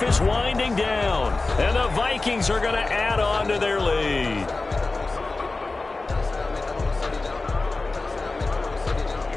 is winding down, and the Vikings are going to add on to their lead.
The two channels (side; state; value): right; quieter; 3.4 dB